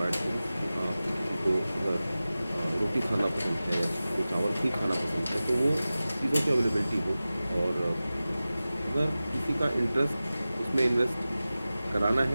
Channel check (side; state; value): both; inverted; correlation -0.96